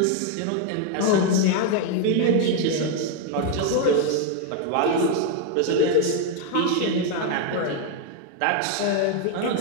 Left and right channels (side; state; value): both; different; correlation 0.01